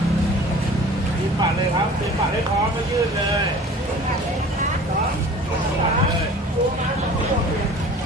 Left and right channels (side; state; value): both; normal; correlation 0.45